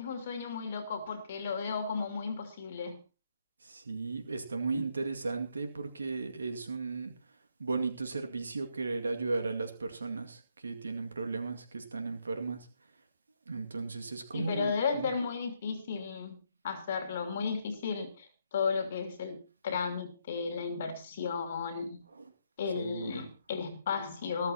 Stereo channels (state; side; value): inverted; both; correlation -0.75